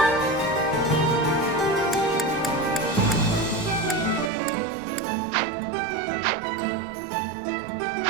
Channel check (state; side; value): drops out; left; at 4.3 s